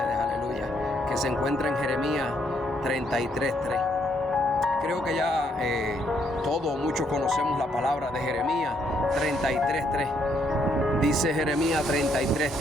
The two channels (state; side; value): normal; both; correlation 0.72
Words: aleluya, que se encuentra en Jeremías 33:3. Creo que ya todos, muchos conocemos la palabra de Jeremías 33:3. Dice Jeremías